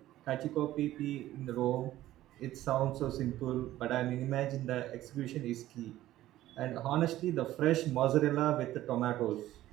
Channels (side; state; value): left; quieter; 14.6 dB